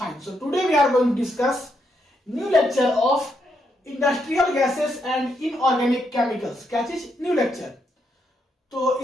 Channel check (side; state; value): both; normal; correlation 0.79